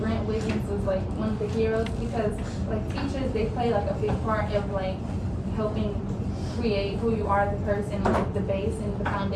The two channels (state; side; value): identical; both; correlation 1.00